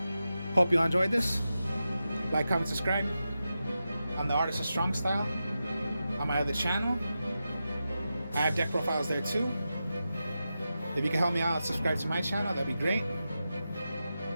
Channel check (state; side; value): inverted; both; correlation -0.90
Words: hope you all enjoyed this. Like, comment, subscribe. I'm the Artist of Strong Style on my other channel. I have deck profiles there too. If you can help me out, subscribe to my channel, that'd be great.